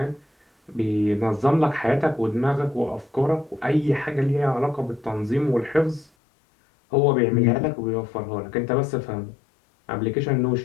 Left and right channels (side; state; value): right; drops out; at 6.1 s